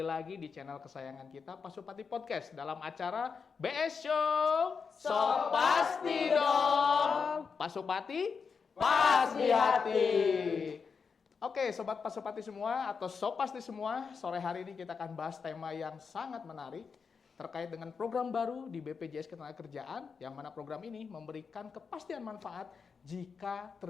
lagi di channel kesayangan kita Pasupati Podcast dalam acara BS Show. So pasti dong. Pasupati pas di hati. Oke, sobat Pasupati semua atau so pasti semua, sore hari ini kita akan bahas tema yang sangat menarik terkait dengan program baru di BPJS Ketenagakerjaan, yang mana program ini memberikan kepastian manfaat jika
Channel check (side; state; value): right; quieter; 5.6 dB